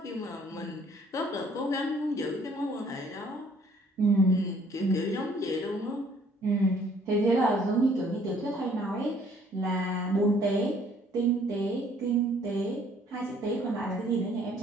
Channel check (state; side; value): normal; both; correlation 0.60